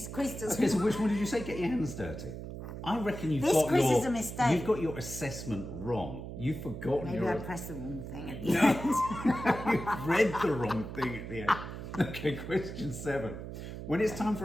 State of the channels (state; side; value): noise; right; hum, 9 dB below the sound